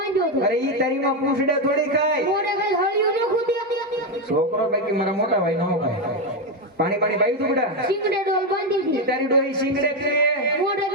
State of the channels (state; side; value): normal; both; correlation 0.08